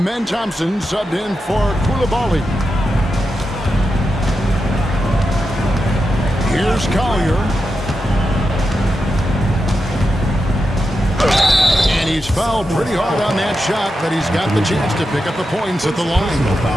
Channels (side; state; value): both; normal; correlation 0.88